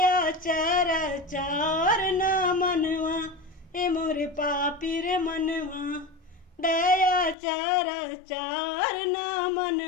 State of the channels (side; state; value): right; drops out; at 7.4 s